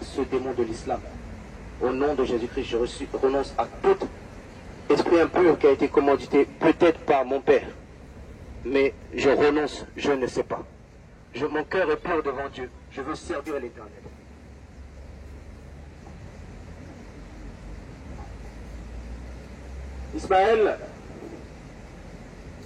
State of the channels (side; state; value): both; identical; correlation 1.00